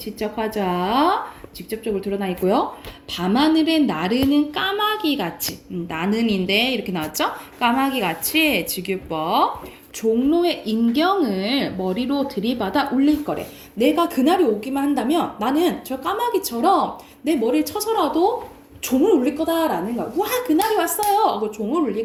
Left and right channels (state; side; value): identical; both; correlation 1.00